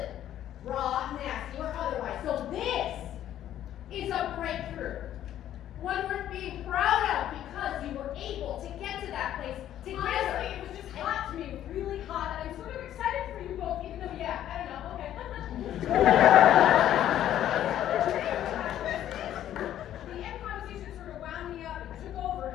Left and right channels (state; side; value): quieter; right; 11.6 dB